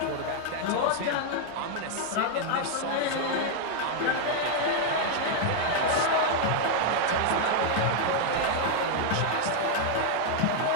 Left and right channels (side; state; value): both; different; correlation 0.00